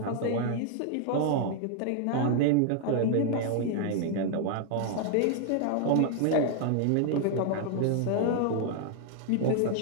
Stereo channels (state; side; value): different; both; correlation 0.00